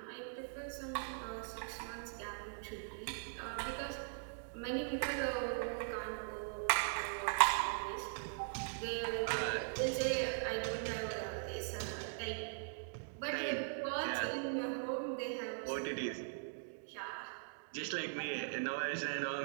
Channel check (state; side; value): silent; left; digital silence